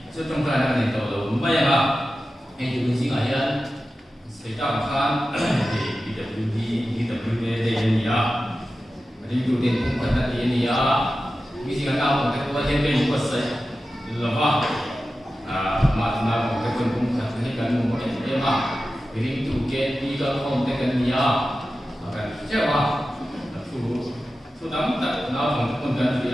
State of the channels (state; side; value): normal; both; correlation 0.93